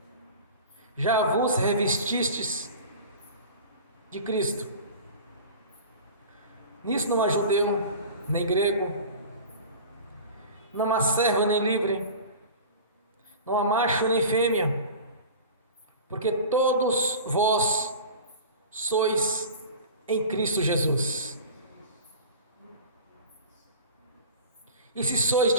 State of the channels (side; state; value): both; inverted; correlation -0.36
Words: já vos revestistes de Cristo. Nisso não há judeu, nem grego, não há servo nem livre, não há macho nem fêmea, porque todos vós sois em Cristo Jesus. E se sois